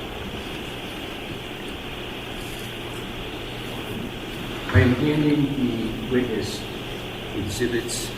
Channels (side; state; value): both; identical; correlation 1.00